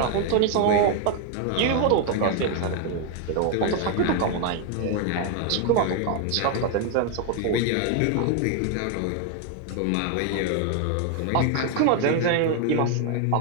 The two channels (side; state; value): both; different; correlation 0.01